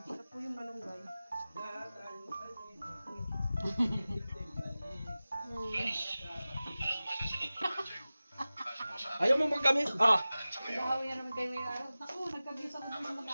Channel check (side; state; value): both; inverted; correlation -0.96